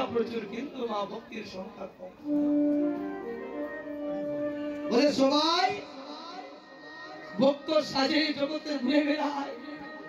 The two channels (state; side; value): identical; both; correlation 1.00